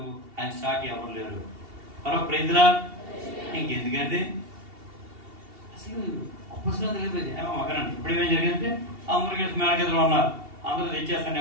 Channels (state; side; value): late; left; 2.7 ms